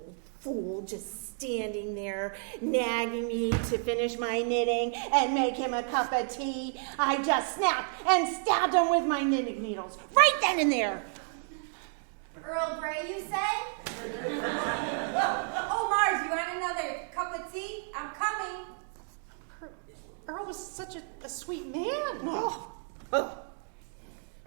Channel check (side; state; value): left; silent; 57 dB below the other